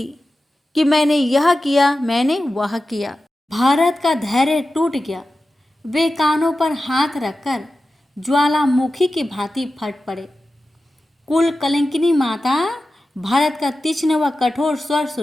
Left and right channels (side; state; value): both; normal; correlation 0.93